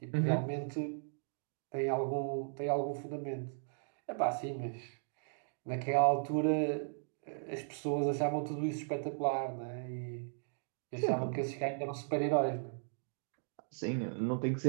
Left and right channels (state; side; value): silent; left; digital silence